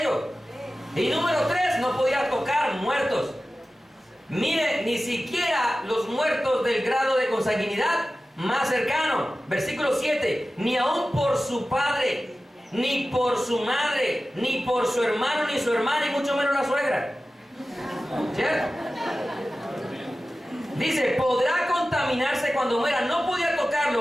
Y número 3, no podía tocar muertos. Mire, ni siquiera los muertos del grado de consanguinidad más cercano. Versículo 7, ni aun por su padre, ni por su madre, ni por su hermano, ni su hermana, y mucho menos la suegra. ¿Cierto? Dice, podrá contaminarse cuando muera. No podía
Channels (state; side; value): normal; both; correlation 0.95